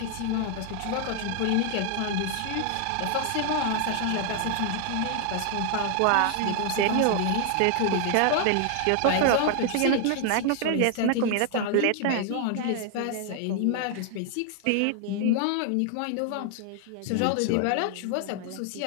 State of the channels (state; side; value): different; both; correlation 0.00